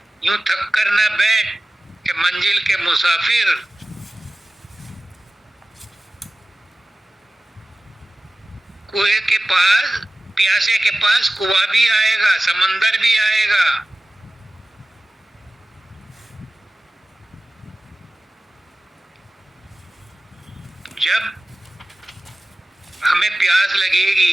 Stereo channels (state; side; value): normal; both; correlation 0.96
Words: यूं थक कर न बैठ कि मंजिल के मुसाफिर, कुएं के पास, प्यासे के पास कुआं भी आएगा, समंदर भी आएगा। जब हमें प्यास